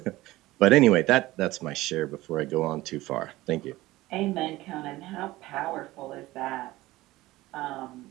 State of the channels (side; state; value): left; quieter; 18.0 dB